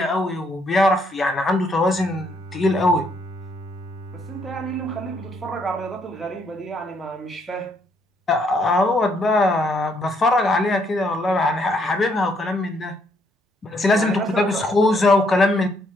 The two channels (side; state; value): both; normal; correlation 0.71